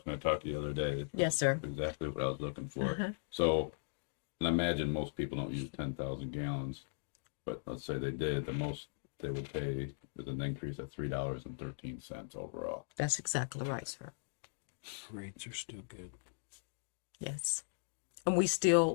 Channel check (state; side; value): silent; right; digital silence